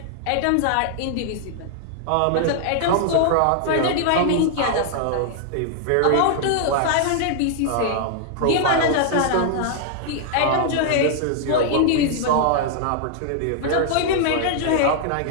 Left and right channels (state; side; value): different; both; correlation -0.01